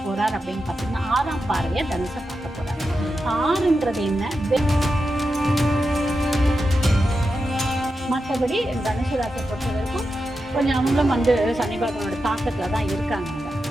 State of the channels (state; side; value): normal; both; correlation 0.89